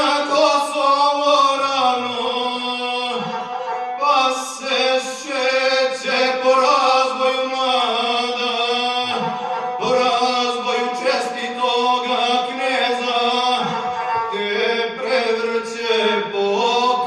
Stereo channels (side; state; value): both; identical; correlation 1.00